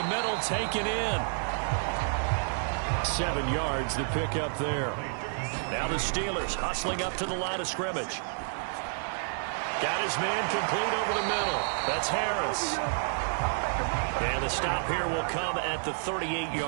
middle, taken in. 7 yards, the pickup there. Now the Steelers hustling up to the line of scrimmage. Got his man complete over the middle. That's Harris. And the stop here will come at the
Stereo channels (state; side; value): silent; left; 58 dB below the other